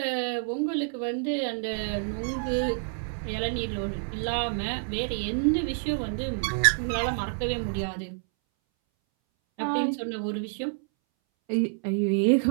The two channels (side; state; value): left; silent; 59 dB below the other